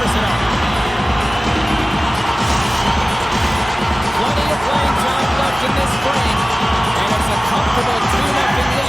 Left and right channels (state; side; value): normal; both; correlation 0.97